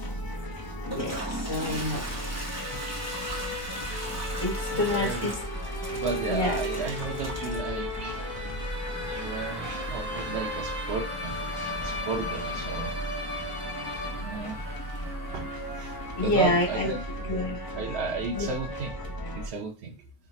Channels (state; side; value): normal; both; correlation 0.12